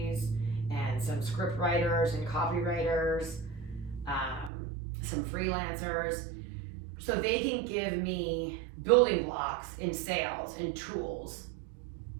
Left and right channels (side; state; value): left; drops out; at 4.5 s